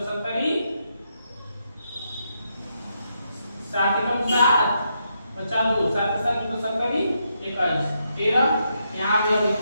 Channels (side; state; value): both; inverted; correlation -0.80